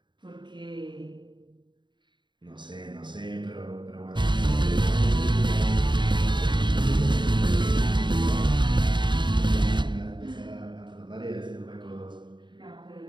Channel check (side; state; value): left; late; 0.22 ms